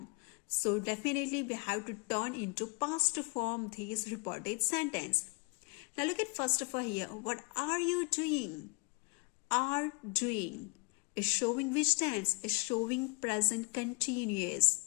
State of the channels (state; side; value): quieter; right; 33.2 dB